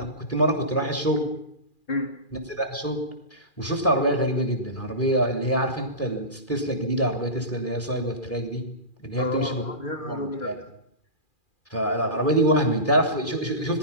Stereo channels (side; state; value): right; late; 2.4 ms